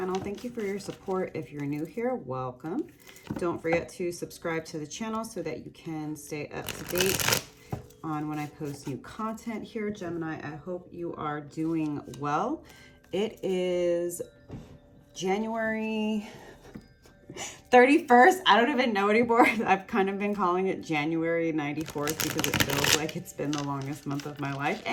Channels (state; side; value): identical; both; correlation 1.00